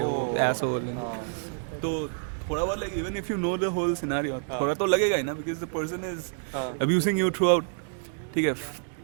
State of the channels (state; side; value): silent; left; digital silence